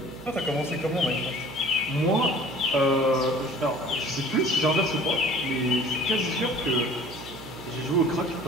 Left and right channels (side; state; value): right; noise; hum, 15 dB below the sound